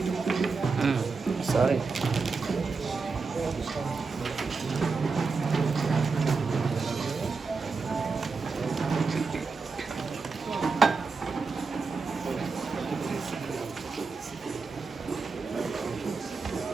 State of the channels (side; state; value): left; quieter; 4.5 dB